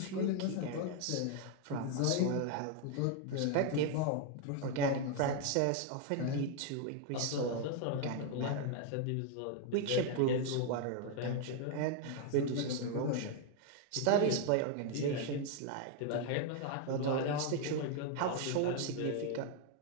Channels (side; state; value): both; different; correlation 0.01